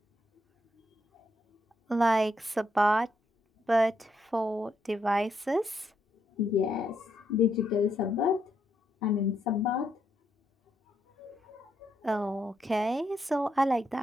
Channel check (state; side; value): normal; both; correlation 0.78